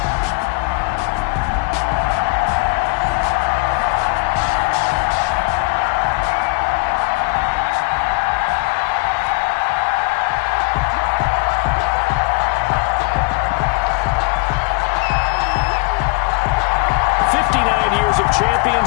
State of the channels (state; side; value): quieter; right; 28.8 dB